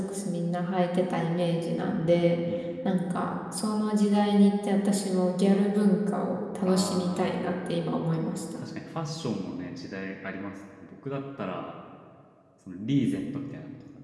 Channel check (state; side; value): identical; both; correlation 1.00